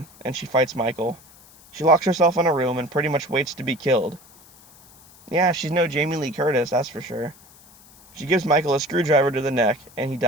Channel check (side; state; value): left; noise; hiss, 25 dB below the sound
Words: and she fights Michael. She locks herself in a room and pretty much waits to be killed. Yeah, she's no Jamie Lee Curtis, that's for sure. She gives Michael a screwdriver to the neck, and he